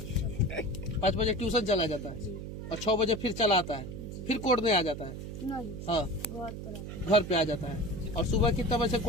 5 बजे ट्यूशन चला जाता है और 6 बजे फिर चला आता है, फिर कोड़ने आ जाता है। नहीं, हाँ, घर पे आ जाता है। और सुबह कितना बजे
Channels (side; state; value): right; noise; hum, 8 dB below the sound